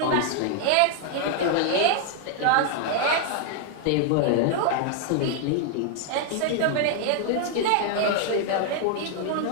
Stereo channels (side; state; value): both; different; correlation 0.00